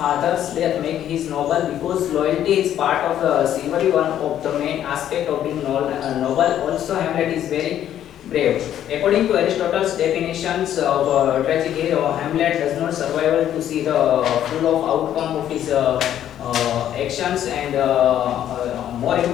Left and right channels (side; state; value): right; quieter; 11.0 dB